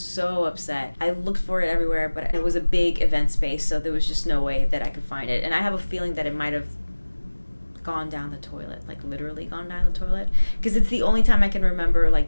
upset. I looked for it everywhere, but it was a big event space, so there was just no way that I could find it. And I have a feeling that it might have gone down the toilet, like literally gone down the toilet, because it's the only time I can remember like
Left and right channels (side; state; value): both; inverted; correlation -1.00